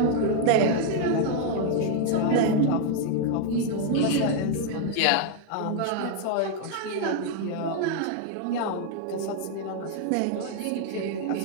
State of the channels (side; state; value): both; different; correlation 0.00